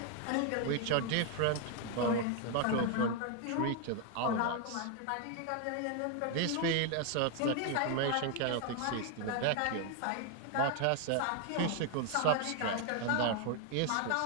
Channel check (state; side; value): different; both; correlation 0.01